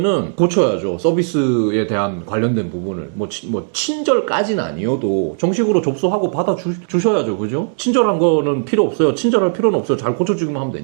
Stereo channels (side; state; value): left; silent; digital silence